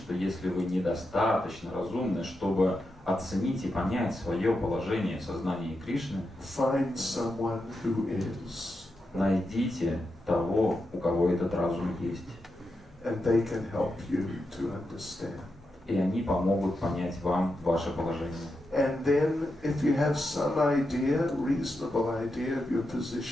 если вы недостаточно разумны, чтобы оценить и понять свое положение в сознании Кришны, find someone who is, найдите того, у кого этот разум есть. and they can help you to understand. И они помогут понять вам ваше положение. And then, if you have some idea, reasonable idea of your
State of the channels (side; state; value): both; normal; correlation 0.87